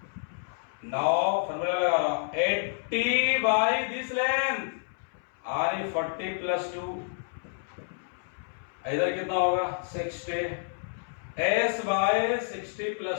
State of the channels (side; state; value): right; silent; 58 dB below the other